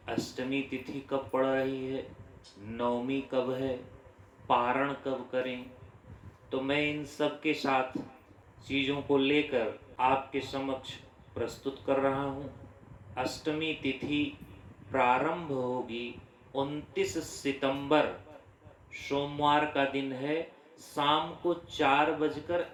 अष्टमी तिथि कब पड़ रही है, नवमी कब है, पारण कब करें। तो मैं इन सब के साथ चीज़ों को लेकर आपके समक्ष प्रस्तुत कर रहा हूँ। अष्टमी तिथि प्रारंभ होगी 29 सितंबर, सोमवार का दिन है, शाम को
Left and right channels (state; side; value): identical; both; correlation 1.00